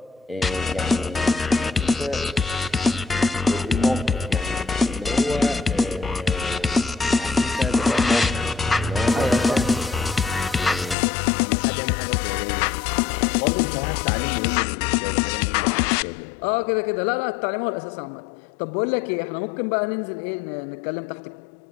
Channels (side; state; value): right; drops out; at 11.0 s